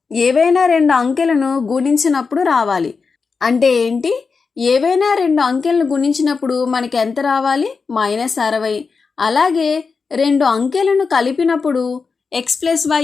ఏవైనా 2 అంకెలను గుణించినప్పుడు రావాలి. అంటే ఏంటి? ఏవైనా 2 అంకెలను గుణించినప్పుడు మనకి ఎంత రావాలి? -60. అలాగే 2 అంకెలను కలిపినప్పుడు x + y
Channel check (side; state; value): right; quieter; 4.9 dB